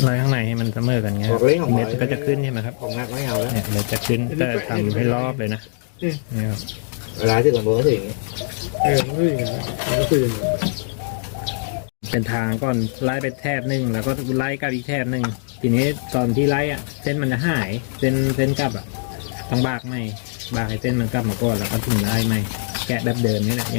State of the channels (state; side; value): silent; right; 64 dB below the other